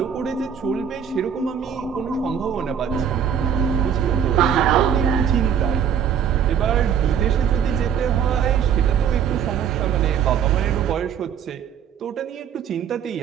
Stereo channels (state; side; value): quieter; left; 8.2 dB